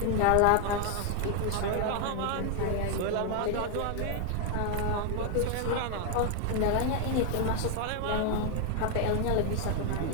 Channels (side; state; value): both; different; correlation 0.00